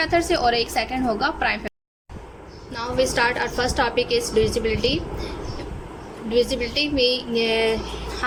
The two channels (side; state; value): both; identical; correlation 1.00